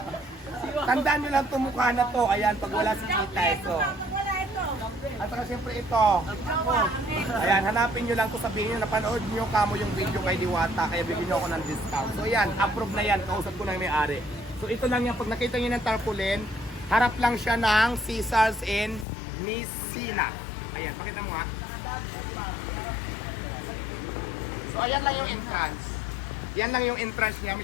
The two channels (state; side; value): drops out; right; at 19.1 s